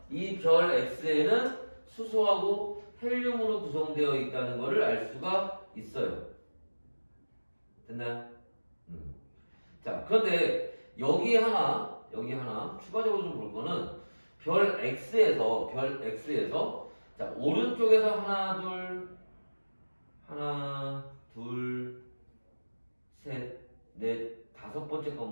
이 별 X에는 수소하고 헬륨으로 구성되어 있다는 것을 알 수가 있어요. 됐나요? 자, 그런데 여기 하나 추가적으로 좀 볼 거는 별 X에서 자, 오른쪽에서 하나, 둘, 셋, 넷, 5번째 거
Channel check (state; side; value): inverted; both; correlation -1.00